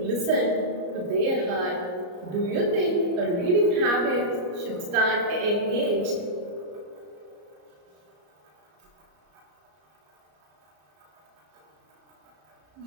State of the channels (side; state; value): left; late; 34 ms